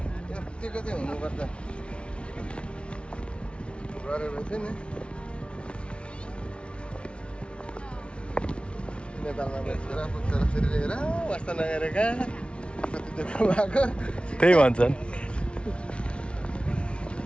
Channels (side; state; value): right; late; 0.059 ms